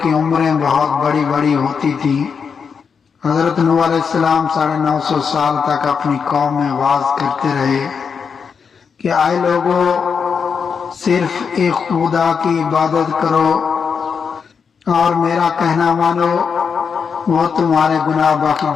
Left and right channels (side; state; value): right; quieter; 6.2 dB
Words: کی عمریں بہت بڑی بڑی ہوتی تھیں۔ حضرت نوح علیہ السلام 950 سال تک اپنی قوم میں واعظ کرتے رہے کہ اے لوگوں، صرف ایک خدا کی عبادت کرو اور میرا کہنا مانو، وہ تمہارے گناہ بخش